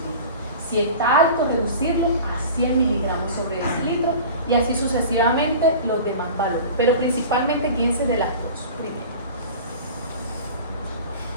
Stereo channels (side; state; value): both; inverted; correlation -0.38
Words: Si está alto, reducirlo a 100 miligramos sobre decilitro, y así sucesivamente los demás valores. Pero principalmente guíense de las dos primero.